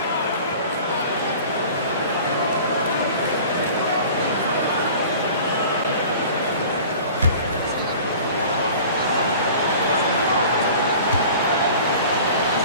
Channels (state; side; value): inverted; both; correlation -0.43